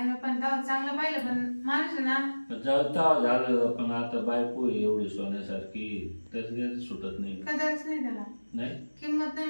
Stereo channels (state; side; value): inverted; both; correlation -1.00